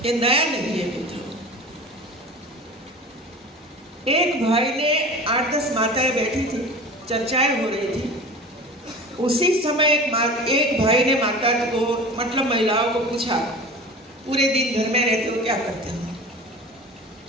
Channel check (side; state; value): both; normal; correlation 0.37